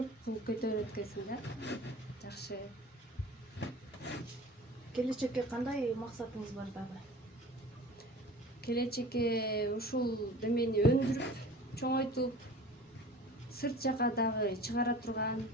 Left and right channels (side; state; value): both; normal; correlation 0.41